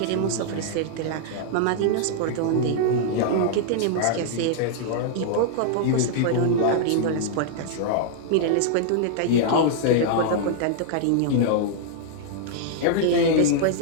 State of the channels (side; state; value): both; different; correlation -0.01